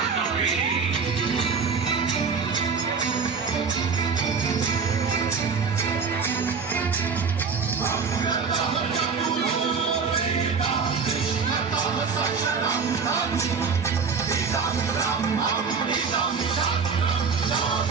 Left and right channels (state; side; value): quieter; left; 5.5 dB